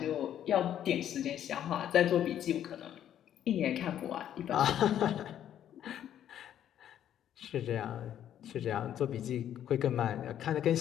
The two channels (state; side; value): quieter; right; 10.6 dB